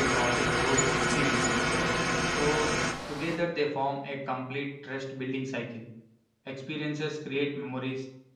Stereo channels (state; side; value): identical; both; correlation 1.00